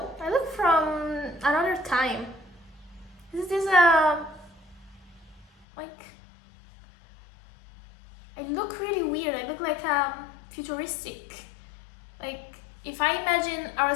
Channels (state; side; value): drops out; right; at 5.7 s